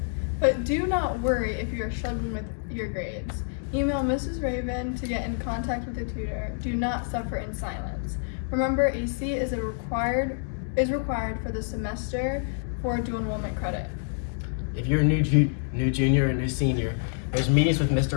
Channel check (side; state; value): right; silent; digital silence